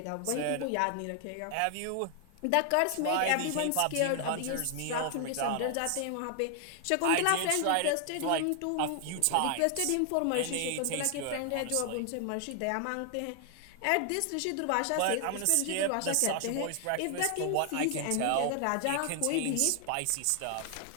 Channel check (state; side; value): different; both; correlation 0.00